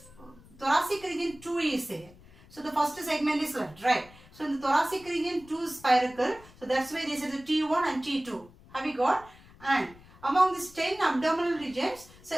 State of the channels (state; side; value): noise; left; rumble, 23 dB below the sound